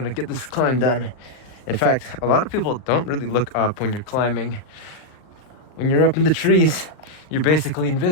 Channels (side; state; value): right; late; 39 ms